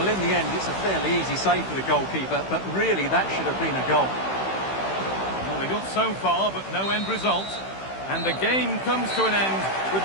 in the end, it's a fairly easy save for the goalkeeper, but really that should have been a goal. Well, they got so far, but no end result. And the game comes to an end with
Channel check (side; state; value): right; late; 15 ms